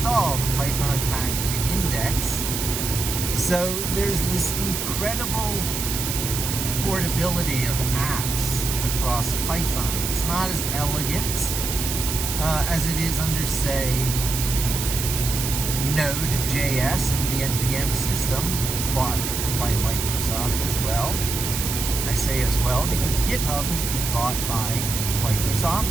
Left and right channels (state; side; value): noise; right; hiss, 3 dB below the sound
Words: the Python packaging index. So there's this incredible portability of apps across Python. It's not as elegant as it is under, say, Node.js with the NPM system, bought by Microsoft as well. I say as well because GitHub has been bought by